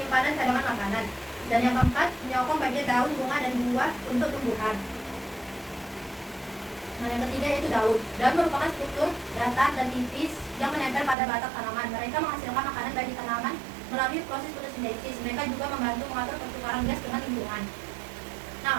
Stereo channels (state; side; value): drops out; left; at 11.2 s